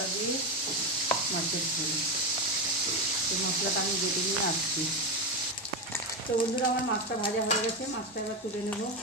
দিয়ে মাছের ঝোল। এই মশলাটা আমি বেটে নিয়ে আসছি। তো বন্ধুরা আমার মাছটা ভাজা হয়ে গেছে। মাছটা এবার তুলে নেব।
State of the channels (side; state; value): both; normal; correlation 0.13